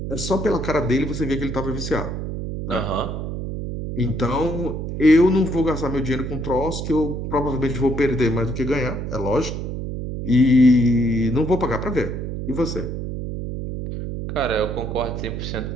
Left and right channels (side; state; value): right; noise; hum, 5 dB below the sound